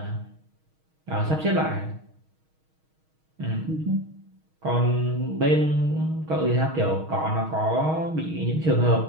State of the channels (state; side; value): late; left; 6.4 ms